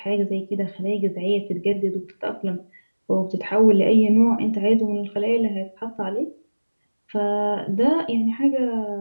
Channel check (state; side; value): inverted; both; correlation -1.00